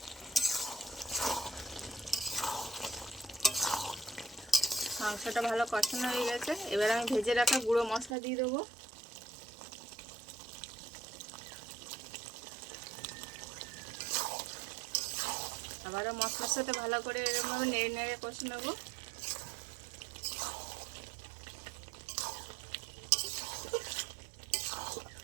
মাংসটা ভালো কষানো হয়ে গেছে, এবার আমি ভেজে রাখা গুঁড়ো মশলা দিয়ে দেবো। আবারও মশলার সাথে ভালো করে এরকমভাবে নেড়ে নেড়ে কষে নেব।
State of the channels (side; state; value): left; drops out; at 8.2 s